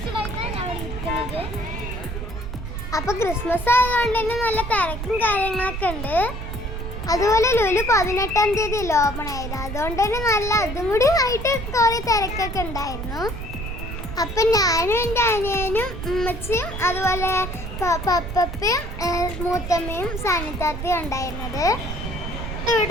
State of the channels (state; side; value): noise; right; rumble, 7 dB below the sound